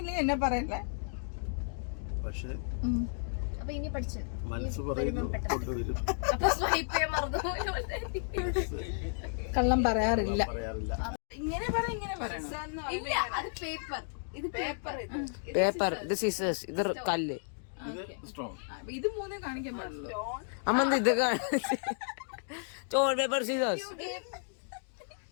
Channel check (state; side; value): silent; right; digital silence